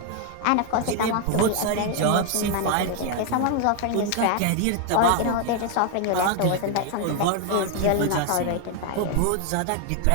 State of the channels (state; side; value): different; both; correlation 0.01